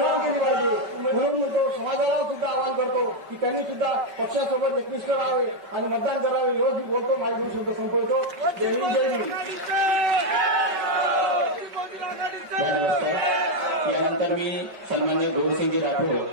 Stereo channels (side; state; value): left; late; 5.2 ms